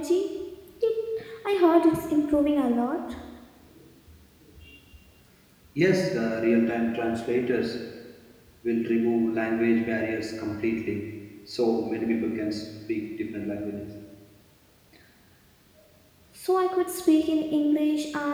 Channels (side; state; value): both; identical; correlation 1.00